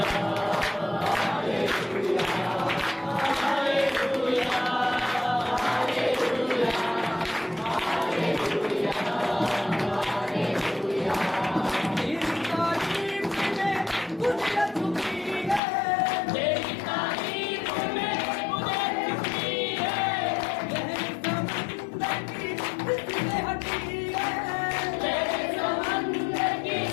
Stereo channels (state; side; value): drops out; right; at 15.6 s